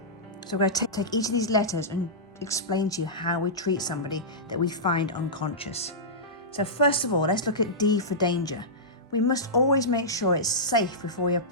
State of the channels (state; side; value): normal; both; correlation -0.15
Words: So we're going to take each of these letters and explain to you how we treat somebody that we find unconscious. So first of all, let's look at D for danger. We must always make sure it's safe before we